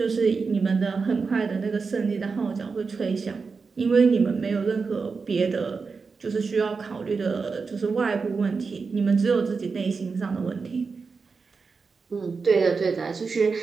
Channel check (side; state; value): left; quieter; 4.8 dB